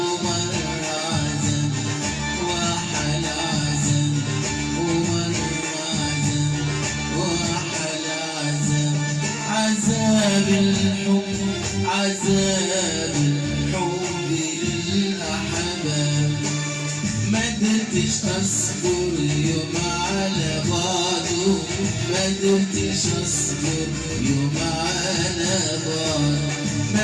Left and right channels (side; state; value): both; identical; correlation 1.00